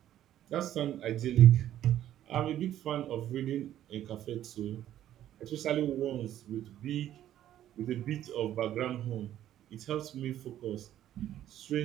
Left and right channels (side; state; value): left; quieter; 12.0 dB